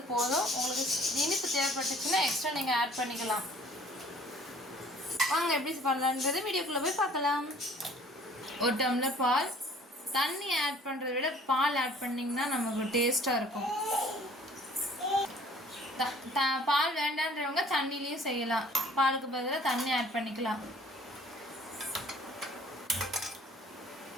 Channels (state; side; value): normal; both; correlation 0.54